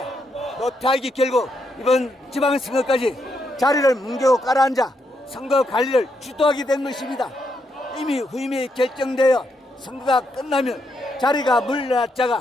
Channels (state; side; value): normal; both; correlation 0.79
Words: 노태학이 결국 이번 지방선거까지 자리를 뭉개고 깔아앉아 선거 관리를 주도하게 된 것입니다. 이미 후임이 결정되어 선거가 끝나면 자리가